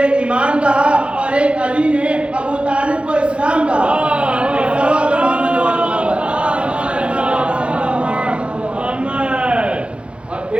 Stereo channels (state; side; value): late; left; 0.058 ms